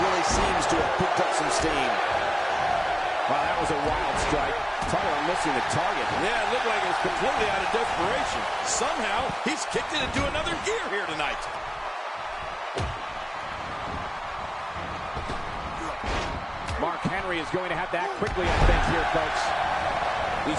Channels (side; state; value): both; identical; correlation 1.00